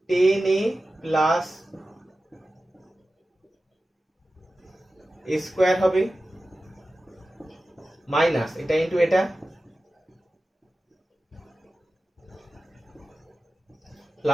10a প্লাস a স্কয়ার হবে মাইনাস এটা ইনটু এটা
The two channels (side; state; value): both; normal; correlation 0.94